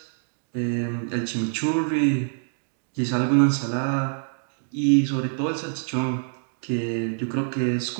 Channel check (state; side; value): silent; left; digital silence